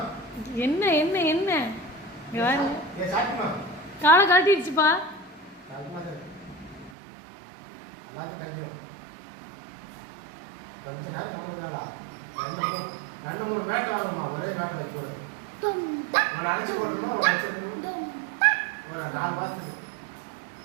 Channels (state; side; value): drops out; left; at 6.9 s